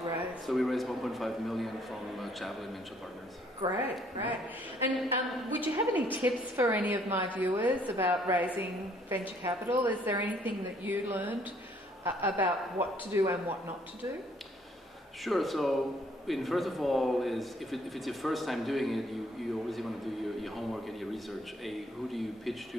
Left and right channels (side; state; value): both; normal; correlation 0.64